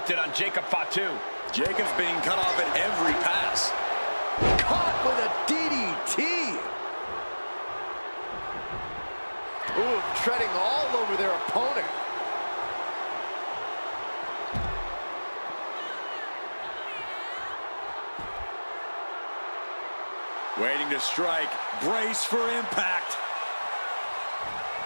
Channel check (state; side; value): inverted; both; correlation -1.00